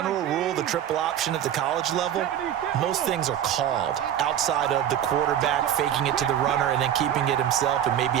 rule, the triple option at the college level, most things are called outside of the quarterback faking it to the runner and then keeping it himself and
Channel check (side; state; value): left; quieter; 10.3 dB